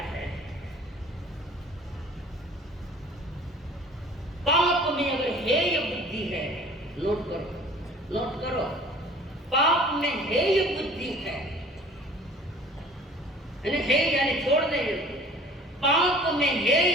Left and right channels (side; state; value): both; normal; correlation 0.48